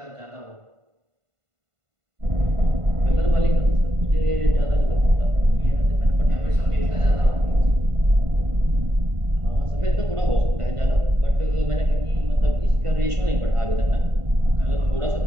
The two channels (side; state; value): left; late; 1.5 ms